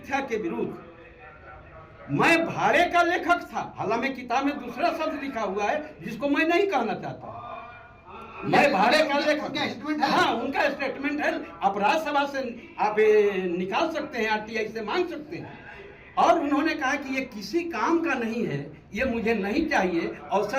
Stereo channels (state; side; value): identical; both; correlation 1.00